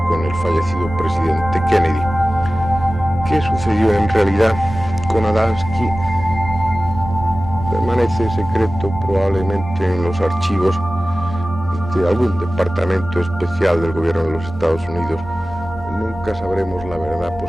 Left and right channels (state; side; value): normal; both; correlation 0.96